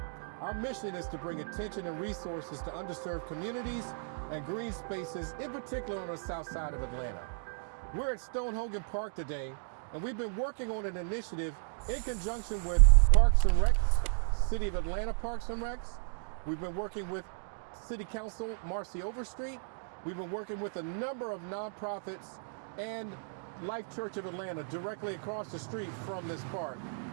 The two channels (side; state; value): left; silent; digital silence